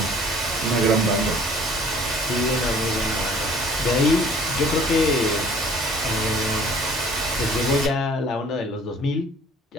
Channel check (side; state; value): both; normal; correlation 0.53